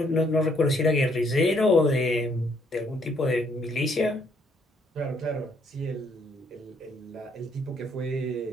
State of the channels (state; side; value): normal; both; correlation 0.69